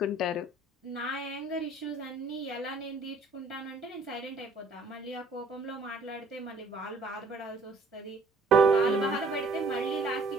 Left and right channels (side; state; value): left; quieter; 3.1 dB